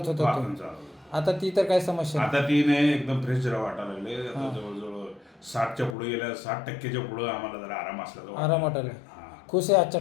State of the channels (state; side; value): drops out; right; at 6.0 s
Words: होतं वाकून तुम्ही. चालत. आता ती तर काय समस्या नाही. आता ती नाही एकदम फ्रेश जरा वाटायला लागले आता जवळजवळ 60च्या पुढे गेल्या 60%च्या पुढे आम्हाला जरा आराम असला आराम वाटायला खुश आहे आजच्या